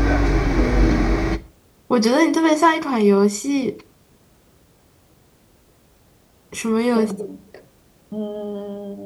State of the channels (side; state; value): both; identical; correlation 1.00